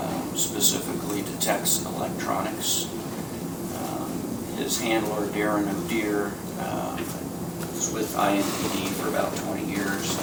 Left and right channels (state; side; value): identical; both; correlation 1.00